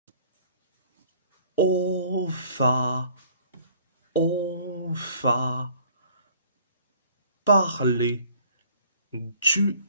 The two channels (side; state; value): both; inverted; correlation -0.55